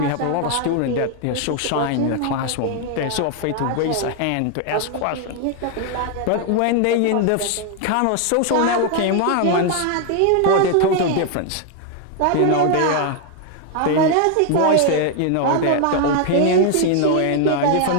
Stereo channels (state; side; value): different; both; correlation 0.00